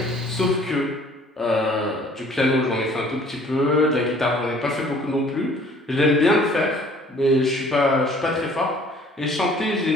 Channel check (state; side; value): normal; both; correlation 0.55